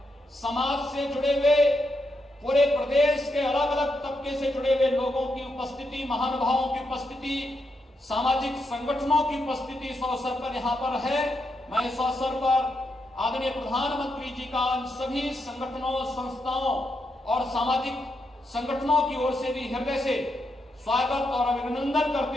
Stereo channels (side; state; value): both; normal; correlation 0.82